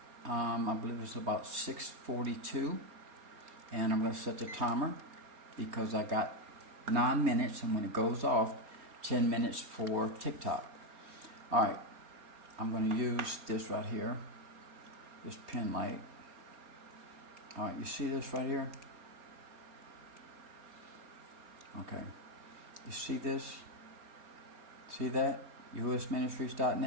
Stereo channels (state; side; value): late; left; 4.3 ms